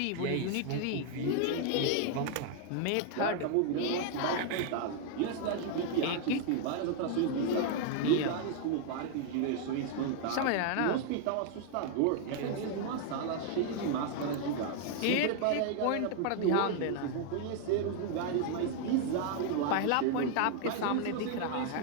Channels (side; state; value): both; different; correlation 0.00